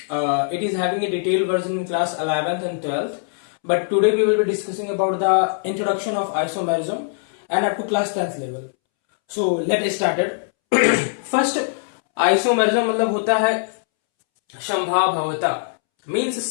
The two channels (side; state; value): right; silent; 65 dB below the other